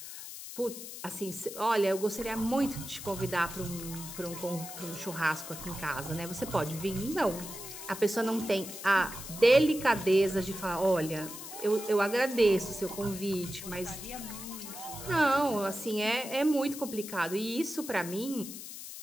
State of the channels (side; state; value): left; noise; hiss, 11 dB below the sound